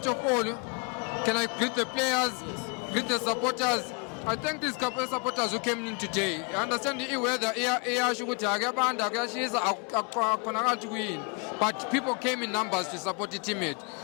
of all, can I greet the players, greet the supporters? I thank these supporters who came in today. I understand the weather iyasho ukuthi akuyabanda kuyashisa akukhonakala kuyini. But people came in numbers to support the teammate.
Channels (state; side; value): quieter; right; 34.1 dB